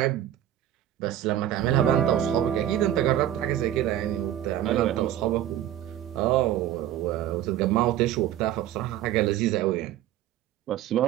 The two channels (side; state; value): left; quieter; 12.0 dB